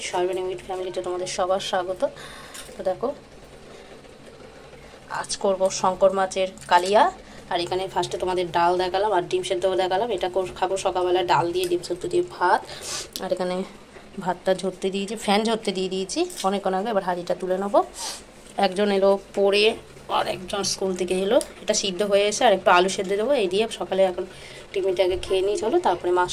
সর্বনিম্ন উইথ ফ্যামিলিতে তোমাদের সবার স্বাগত। তো দেখো, আজ করবো শঙ্কর মাছের কালিয়া। আর এখানে ফার্স্টে তোমাদের ডাল দেখালাম আর ডিম সেদ্ধও দেখালাম। এটা খাবো সকালবেলা, ডাল দিয়ে ডিম সেদ্ধ দিয়ে ভাত। আর এখানে ভাতটা ঝরতে দিয়েছি, ফ্যান ঝরতে দিয়ে দিয়েছি অনেকক্ষণ আগে। এবার হাঁড়িটা তুলে নেবো। একজন এলো পড়ে আর একজন স্কুল থেকে এলো। এটা সিদ্ধ হয়ে এসে আর একটু আলু সেদ্ধ দেবো। এই দিয়ে সকালে এখন টিফিনটাকে খেয়ে নিই। চলো, তারপরে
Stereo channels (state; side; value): identical; both; correlation 1.00